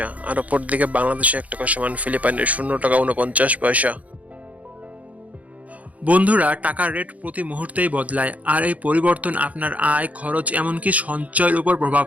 আর অপরদিকে বাংলাদেশে 1 টাকা সমান ফিলিপাইনের 0 টাকা 49 পয়সা। বন্ধুরা, টাকার রেট প্রতি মুহূর্তেই বদলায়, আর এই পরিবর্তন আপনার আয়, খরচ, এমনকি সঞ্চয়ের উপর প্রভাব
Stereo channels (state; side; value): late; left; 0.070 ms